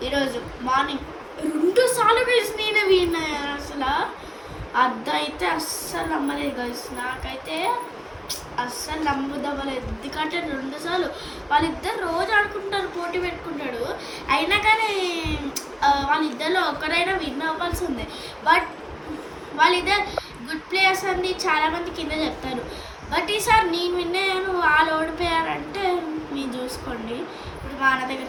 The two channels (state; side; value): identical; both; correlation 1.00